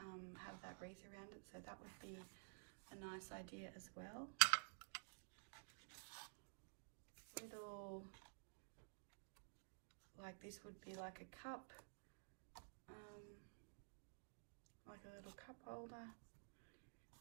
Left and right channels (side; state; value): left; silent; digital silence